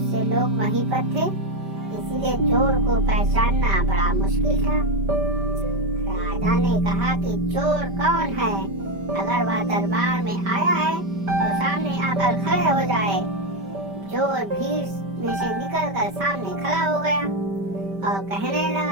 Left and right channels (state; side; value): late; left; 5.1 ms